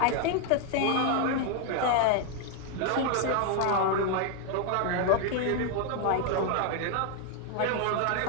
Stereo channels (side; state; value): both; different; correlation 0.01